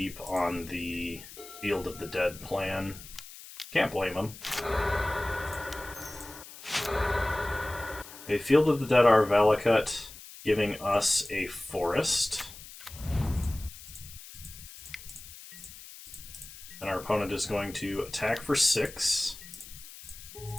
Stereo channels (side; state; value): left; noise; hiss, 16 dB below the sound